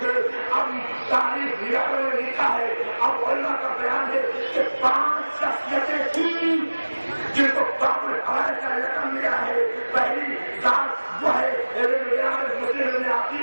اب تاریخ ریاضوں میں لکھا ہے. اب علماء کا بیان ہے کہ 5 شخصیتیں تھیں جن کو باب الحوائج کا رقم ملا ہے. پہلی ذات وہ ہے مسلم میں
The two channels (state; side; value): inverted; both; correlation -1.00